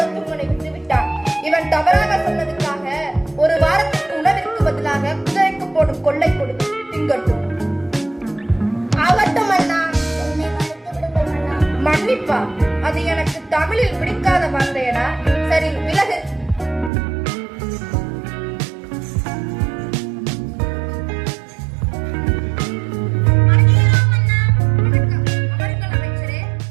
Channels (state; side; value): drops out; left; at 16.9 s